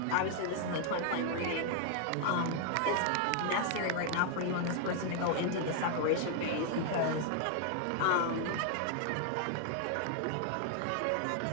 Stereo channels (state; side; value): different; both; correlation 0.00